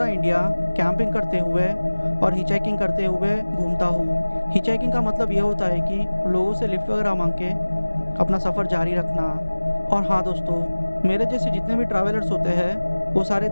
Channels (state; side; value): inverted; both; correlation -1.00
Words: इंडिया कैंपिंग करते हुए और हिचहाइकिंग करते हुए घूमता हूँ। हिचहाइकिंग का मतलब ये होता है कि लोगों से लिफ्ट वगैरह मांग के अपना सफ़र जारी रखना। और हाँ दोस्तों, मेरे जैसे जितने भी ट्रैवलर्स होते हैं वो सारे